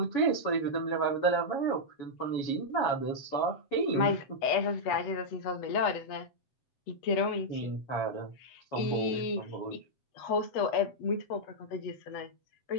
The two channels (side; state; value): right; late; 8.2 ms